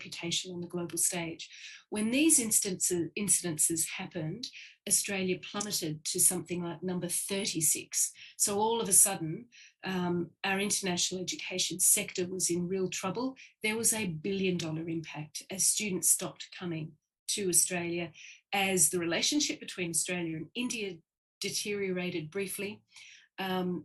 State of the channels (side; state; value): both; identical; correlation 1.00